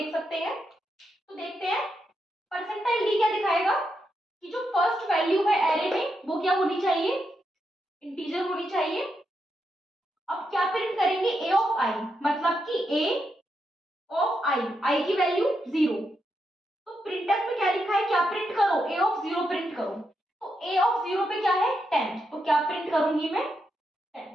सकते हैं। तो देखते हैं परसेंटाइल डी क्या दिखाएगा कि जो फर्स्ट वैल्यू है एरे में वो क्या होनी चाहिए, इंटीजर होनी चाहिए। अब क्या प्रिंट करेंगे, ए ऑफ आई, मतलब कि ए ऑफ आई की वैल्यू 0। तो प्रिंटफ में क्या लिखा है, क्या प्रिंट करो, ए ऑफ 0 प्रिंट करो। तो ए ऑफ 0 पे क्या है 10, तो क्या प्रिंट करूंगी मैं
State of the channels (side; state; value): both; normal; correlation 0.83